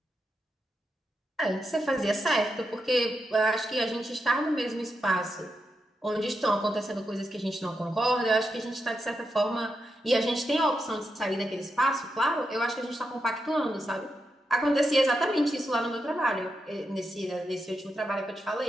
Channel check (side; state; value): both; normal; correlation 0.86